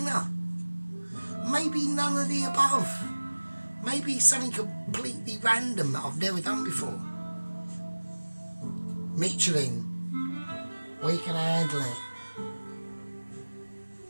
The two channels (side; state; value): both; inverted; correlation -1.00